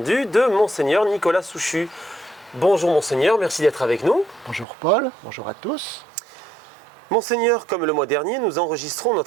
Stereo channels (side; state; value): left; drops out; at 4.7 s